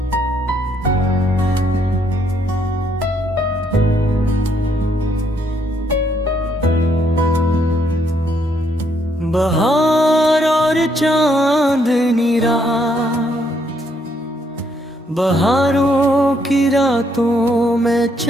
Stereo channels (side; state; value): both; normal; correlation 0.72